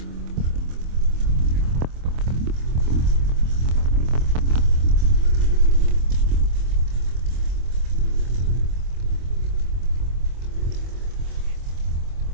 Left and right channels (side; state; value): left; late; 25 ms